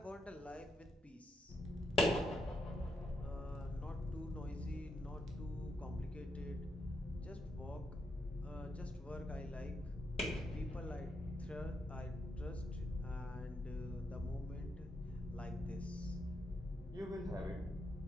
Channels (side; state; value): both; normal; correlation 0.80